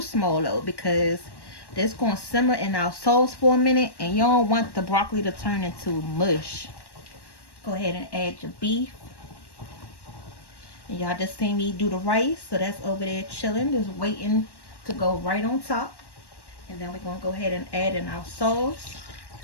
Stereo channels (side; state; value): right; late; 1.1 ms